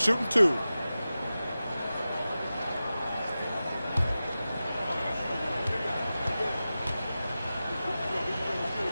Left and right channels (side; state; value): both; inverted; correlation -0.94